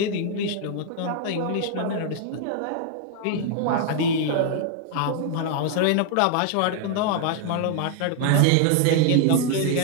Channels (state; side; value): different; both; correlation 0.00